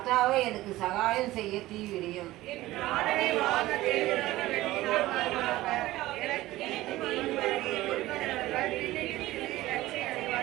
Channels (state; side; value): quieter; left; 17.1 dB